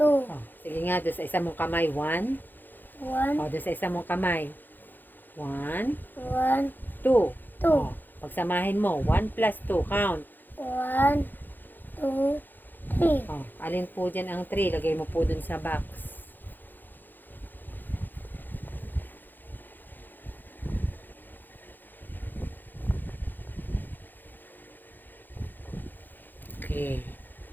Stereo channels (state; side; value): late; right; 0.089 ms